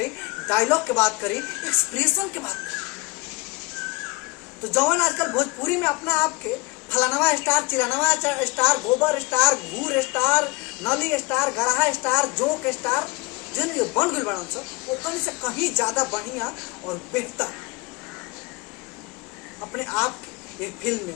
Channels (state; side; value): quieter; right; 25.5 dB